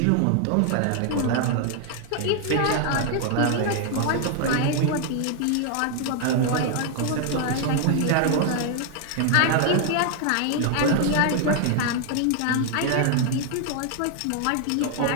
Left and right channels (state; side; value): different; both; correlation 0.00